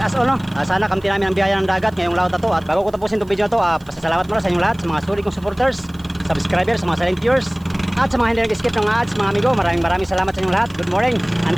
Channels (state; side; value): noise; right; hiss, 29 dB below the sound